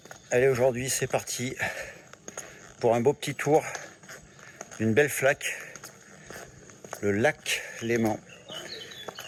allez aujourd'hui c'est parti pour un beau petit tour d'une belle flaque, le lac Léman.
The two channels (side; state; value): both; identical; correlation 1.00